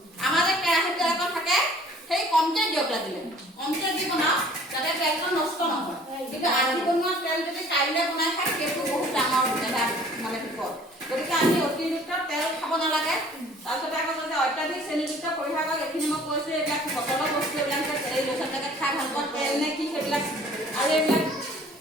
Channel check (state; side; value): normal; both; correlation 0.52